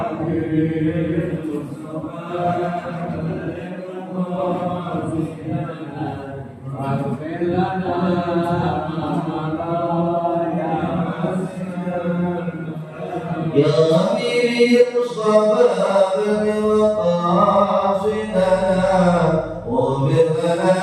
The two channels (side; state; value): both; identical; correlation 1.00